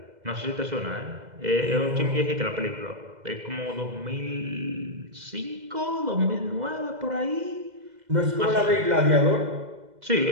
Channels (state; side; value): late; left; 2.0 ms